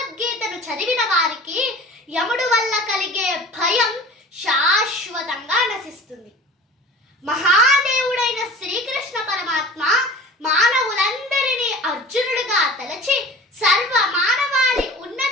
చదివిన వారికి యముడు వల్ల కలిగే భయం శాశ్వతంగా నశిస్తుంది. మహాదేవుడైన శ్రీకృష్ణ పరమాత్మ మానవులందరినీ అర్జునుడిగా తలచి సర్వ మానవాళి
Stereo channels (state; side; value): normal; both; correlation 0.40